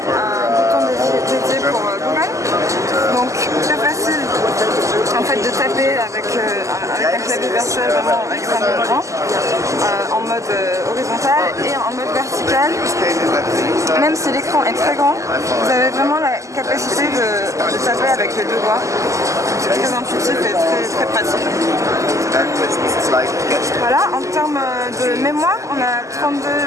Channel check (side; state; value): left; late; 0.16 ms